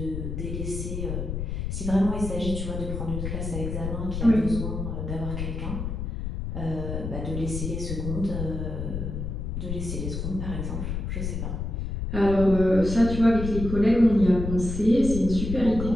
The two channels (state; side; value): noise; left; rumble, 4 dB below the sound